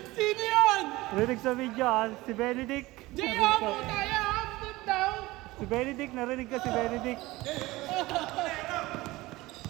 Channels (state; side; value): quieter; left; 19.6 dB